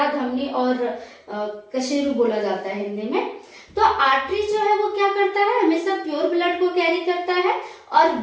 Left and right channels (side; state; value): both; identical; correlation 1.00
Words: धमनी और कशेरू बोला जाता है हिंदी में। तो आर्टरी जो है वो क्या करता है, हमेशा प्योर ब्लड को कैरी करता है। और